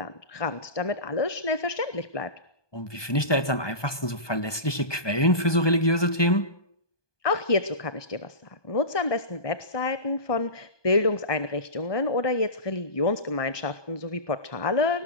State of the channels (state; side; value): late; right; 1.2 ms